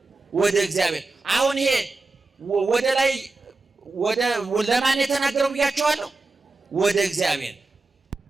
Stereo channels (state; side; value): quieter; left; 3.4 dB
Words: ወደ እግዚአብሔር። አሁን ይሄ ወደ ላይ ለማን የተናገረው ብያቸዋለሁ? ወደ እግዚአብሔር።